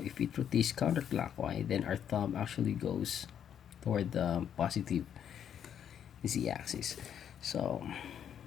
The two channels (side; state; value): right; quieter; 9.0 dB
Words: if it rotates counterclockwise, then our thumb actually goes toward the positive z-axis. So